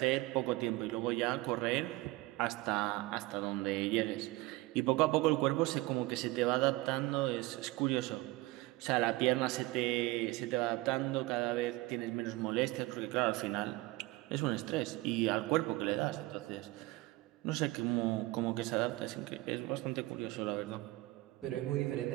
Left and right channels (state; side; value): quieter; left; 20.3 dB